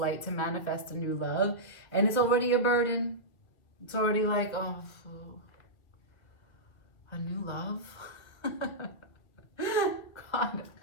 to manifest a new love, and it's already a burden. It's already like, oh, a new love? God,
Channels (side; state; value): right; late; 2.0 ms